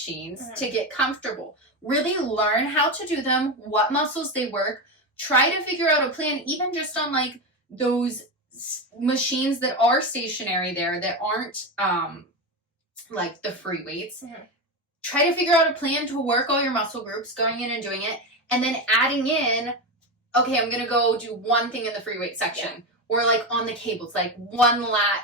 to get comfortable. Really learn how to do them, what muscles they work. Try to figure out a plan, even just on, like, those machines that are stationary there that aren't, like, the free weights. Try to figure out a plan to work all your muscle groups, going in and doing it, and then adding in, okay, I'm going to go do one thing in the free weight section. Yeah. Or, like, on the cables, like, one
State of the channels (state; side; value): normal; both; correlation 0.15